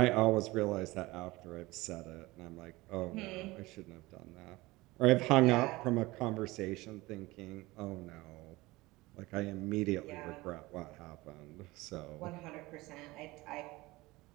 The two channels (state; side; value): quieter; left; 20.7 dB